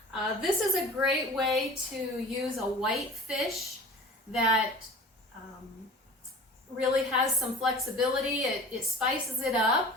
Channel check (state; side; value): normal; both; correlation 0.40